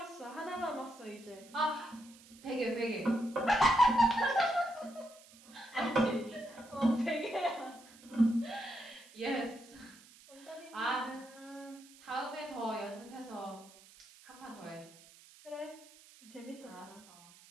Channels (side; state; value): right; noise; hiss, 22 dB below the sound